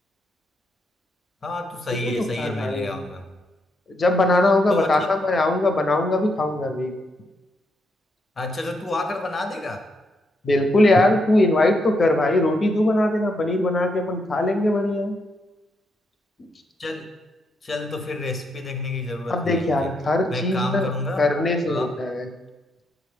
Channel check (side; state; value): both; normal; correlation 0.79